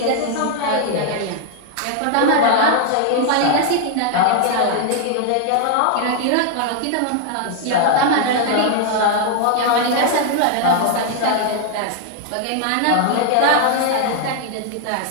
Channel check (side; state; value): both; different; correlation 0.00